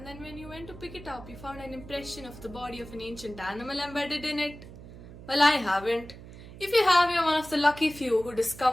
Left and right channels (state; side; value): noise; right; hum, 16 dB below the sound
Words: then when you went to pick it up, you found an impression of the body of an ancient animal embedded in it? Well, I haven't. If you have, you're one of the lucky few who